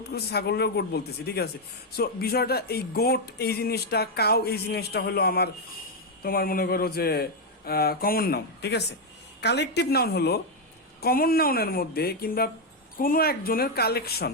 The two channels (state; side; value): normal; both; correlation 0.02